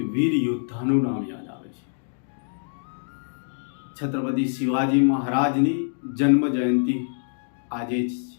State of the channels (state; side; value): silent; right; digital silence